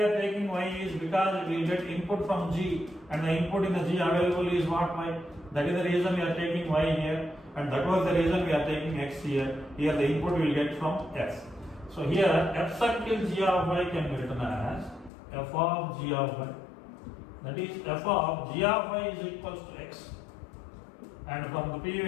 taking y is because we will get input from G and the input in the G available is what y. That is the reason we are taking y here and that was the reason we are taking x here. Here the input we will get from x. So here f circle G of y can be written as f of G of y. That is f of G of y is equals to x. And from the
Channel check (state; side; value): drops out; right; at 15.1 s